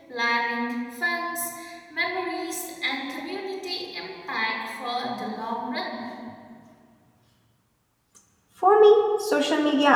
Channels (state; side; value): identical; both; correlation 1.00